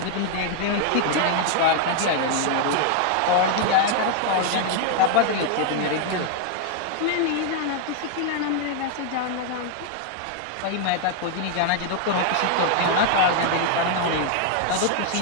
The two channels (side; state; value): both; different; correlation 0.00